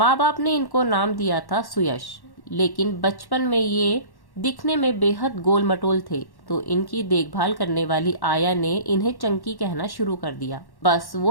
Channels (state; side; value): late; right; 1.1 ms